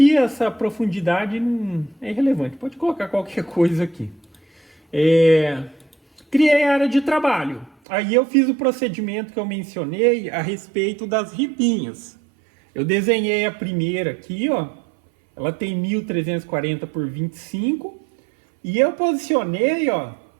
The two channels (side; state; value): left; drops out; at 7.7 s